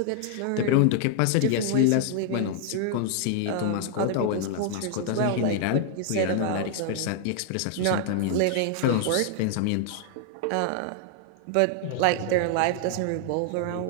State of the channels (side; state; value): both; different; correlation 0.00